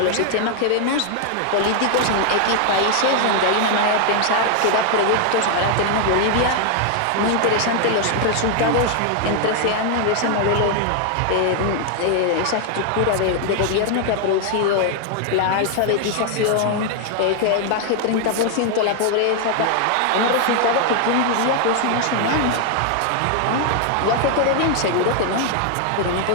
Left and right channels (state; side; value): different; both; correlation 0.00